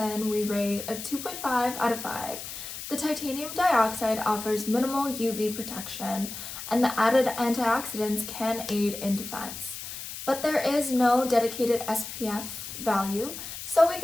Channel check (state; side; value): noise; left; hiss, 9 dB below the sound